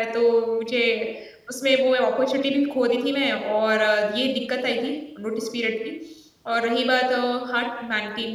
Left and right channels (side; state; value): both; identical; correlation 1.00